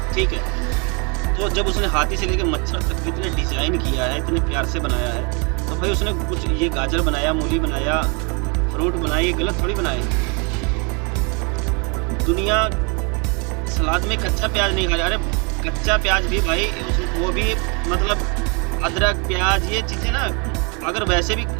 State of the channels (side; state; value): left; quieter; 33.1 dB